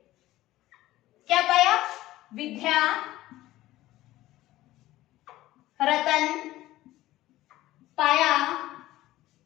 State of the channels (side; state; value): right; quieter; 16.1 dB